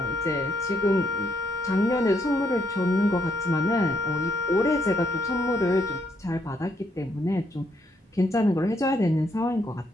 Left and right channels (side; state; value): both; normal; correlation 0.74